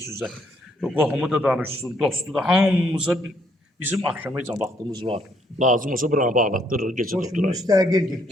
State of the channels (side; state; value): both; normal; correlation 0.69